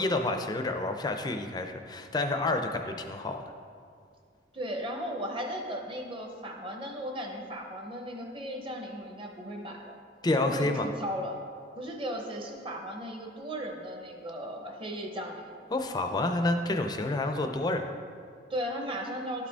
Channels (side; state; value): both; normal; correlation 0.43